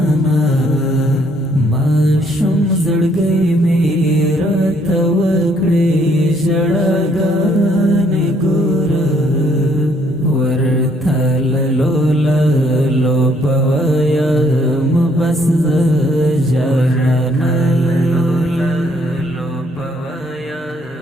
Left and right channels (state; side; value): normal; both; correlation 0.67